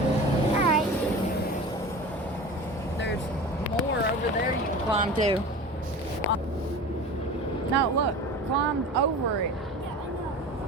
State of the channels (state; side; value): normal; both; correlation 0.35